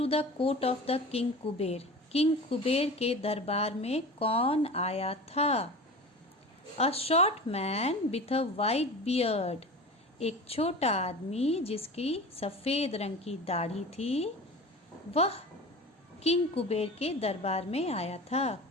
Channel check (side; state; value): both; normal; correlation 0.34